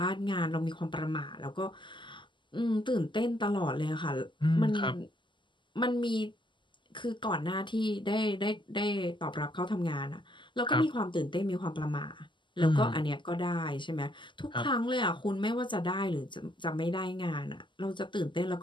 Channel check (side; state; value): right; late; 0.24 ms